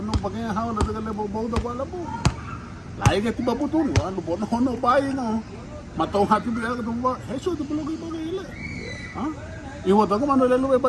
pakai habu nanti kalau bau tu bala bu. Lai ke tiba putu ni, anu bono hono pai no. Matau hati biar tu buka heso tu perlu kita gila. Iwo tu kan mana lelu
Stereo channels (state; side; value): identical; both; correlation 1.00